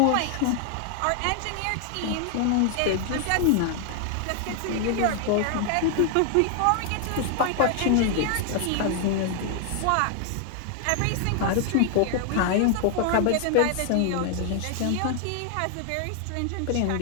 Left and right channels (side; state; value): both; different; correlation 0.00